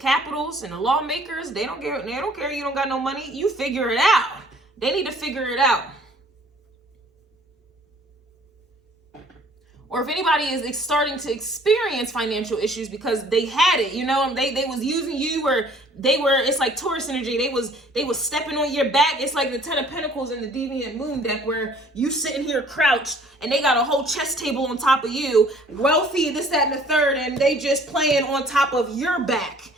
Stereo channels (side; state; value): both; normal; correlation 0.55